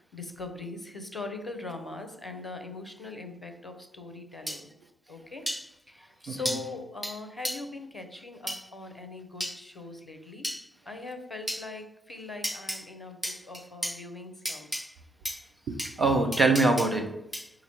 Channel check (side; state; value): both; normal; correlation 0.73